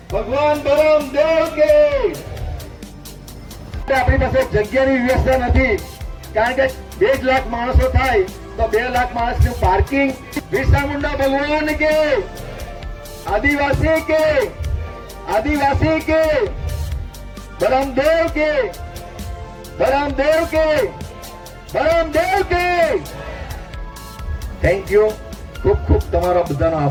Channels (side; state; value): both; identical; correlation 1.00